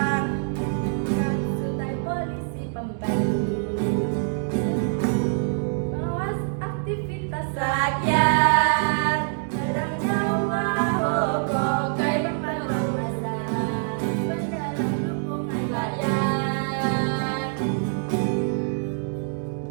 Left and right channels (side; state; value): left; silent; digital silence